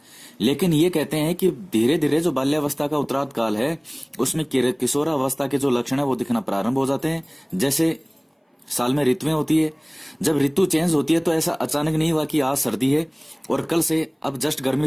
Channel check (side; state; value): both; identical; correlation 1.00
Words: लेकिन ये कहते हैं कि धीरे धीरे जो बाल्यावस्था का उत्तरार्ध काल है उसमें किशोरावस्था के जो लक्षण है वो दिखना प्रारंभ हो जाते हैं। जैसे साल में ऋतुएं होती है, जब ऋतु चेंज होती है तो ऐसा अचानक नहीं हुआ कि आज सर्दी है और कल से अब जस्ट